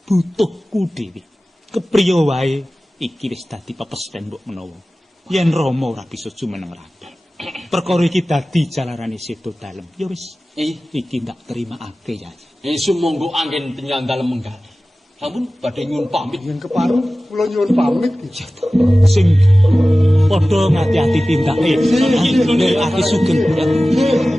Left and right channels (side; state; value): both; normal; correlation 0.96